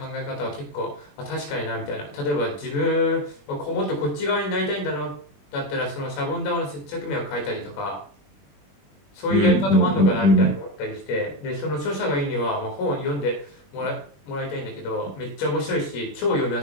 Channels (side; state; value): right; late; 21 ms